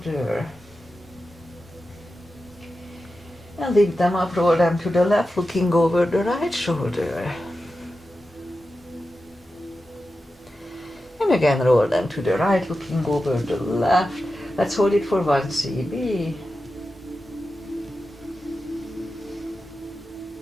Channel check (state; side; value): normal; both; correlation 0.91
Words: And lift them up, roll them to the left, looking over the right shoulder. And again roll them to the right, looking over the left. Let's hold it for 1 CB.